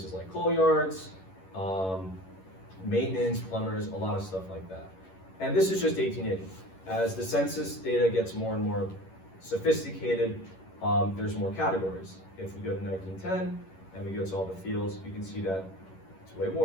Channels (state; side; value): late; right; 11 ms